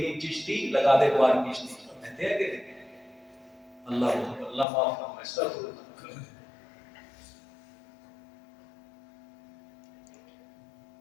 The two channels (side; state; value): right; drops out; at 4.7 s